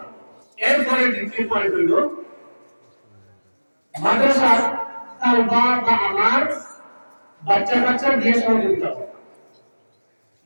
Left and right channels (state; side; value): inverted; both; correlation -1.00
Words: এরপরে দ্বিতীয় পয়েন্ট হইল মাদ্রাসার তালবা বা আমার বাচ্চা দিয়ে সহযোগিতা করে।